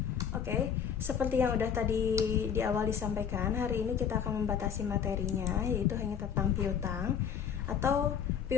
Oke, seperti yang udah tadi di awal disampaikan, hari ini kita akan membatasi materinya, yaitu hanya tentang piutang. Atau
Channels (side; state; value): right; quieter; 7.8 dB